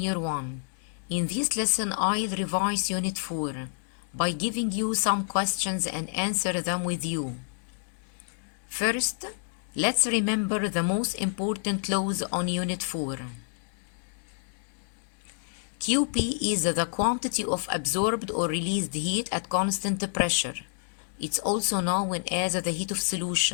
1. In this lesson I'll revise Unit 4 by giving you some questions and answer them with you. First, let's remember the most important laws on Unit 4. QP is the quantity of absorbed or released heat at constant pressure. It's also known as the heat of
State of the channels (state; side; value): silent; right; 59 dB below the other